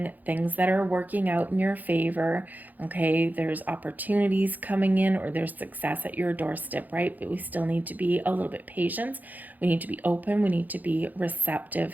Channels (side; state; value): left; late; 0.082 ms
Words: things that are working out in your favor. Okay, there's opportunities coming in, or there's success at your doorstep, right? But we still need to be a little bit patient. We need to be open. We need to be